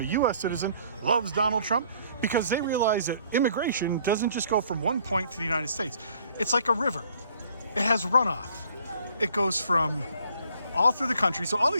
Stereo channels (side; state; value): both; inverted; correlation -0.59